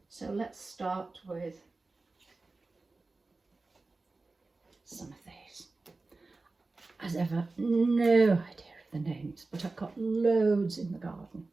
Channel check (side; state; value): left; quieter; 3.5 dB